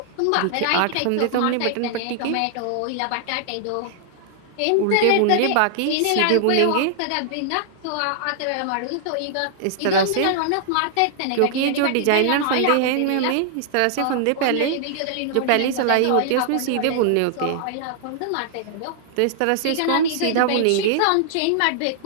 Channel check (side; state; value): both; different; correlation -0.01